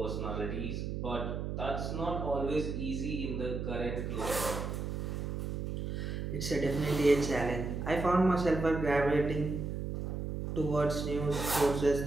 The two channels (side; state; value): right; noise; hum, 3 dB below the sound